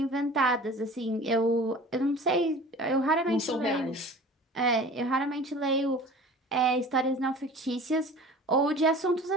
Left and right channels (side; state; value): both; normal; correlation 0.42